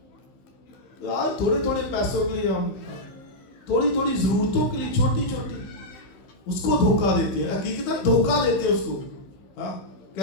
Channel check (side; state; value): right; late; 15 ms